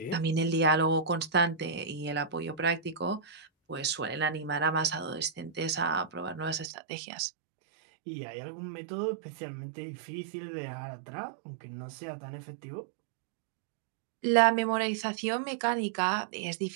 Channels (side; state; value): left; drops out; at 6.7 s